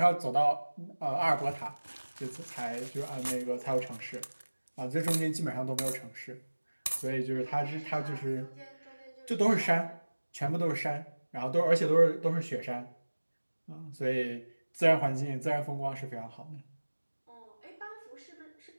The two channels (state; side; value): inverted; both; correlation -1.00